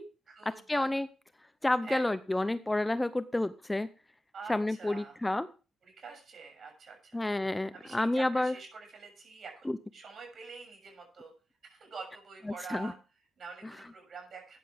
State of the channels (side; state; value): both; normal; correlation 0.98